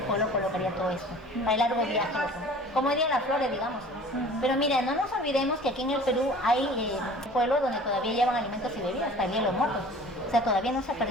colocaría todo esto, para el largo viaje. Como dirían las flores, digamos. Pero mira, no nos olvidemos que aquí en el Perú hay pueblos donde todavía llevan alimentos y bebidas, también los muertos. O sea, todavía no se ha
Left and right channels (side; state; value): both; normal; correlation 0.46